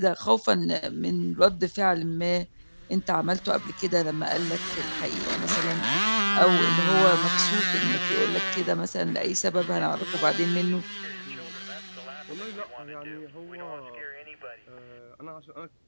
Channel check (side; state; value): both; inverted; correlation -1.00